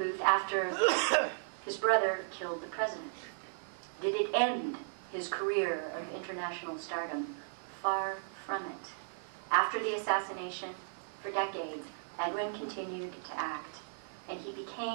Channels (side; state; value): left; silent; digital silence